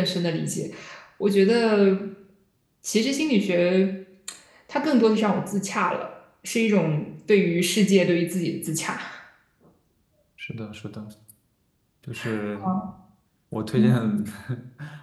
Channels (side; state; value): both; identical; correlation 1.00